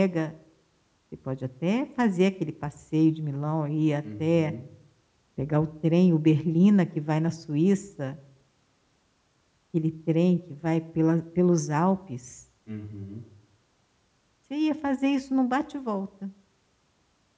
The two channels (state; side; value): identical; both; correlation 1.00